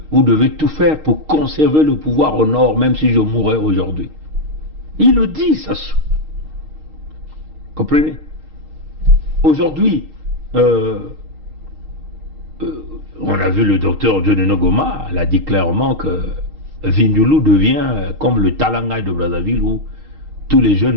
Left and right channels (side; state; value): left; late; 6.5 ms